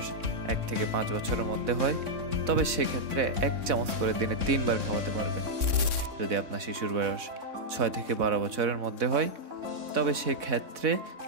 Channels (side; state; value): left; late; 3.6 ms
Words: 1 থেকে 5 বছরের মধ্যে হয়, তবে সেক্ষেত্রে 1 চামচ করে দিনে 3 বার খাওয়াতে পারবেন। যদি আপনার শিশুর বয়স 6 থেকে 12 বছরের মধ্যে হয়, তবে সেক্ষেত্রে